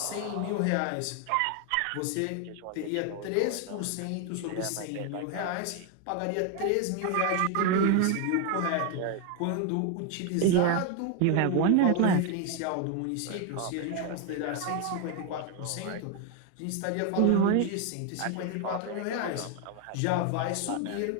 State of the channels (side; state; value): both; different; correlation 0.01